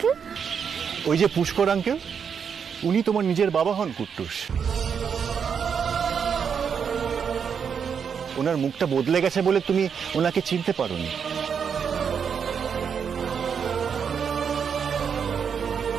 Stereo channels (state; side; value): quieter; left; 6.9 dB